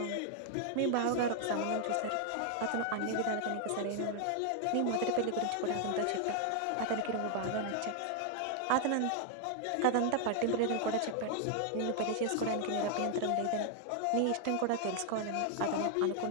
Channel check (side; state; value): both; different; correlation 0.00